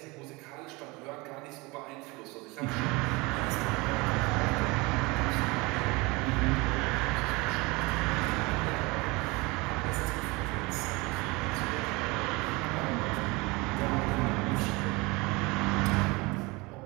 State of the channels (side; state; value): left; quieter; 24.8 dB